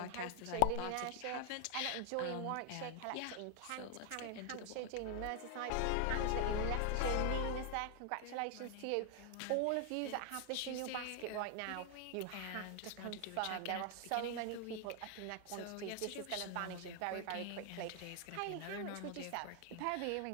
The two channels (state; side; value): different; both; correlation 0.00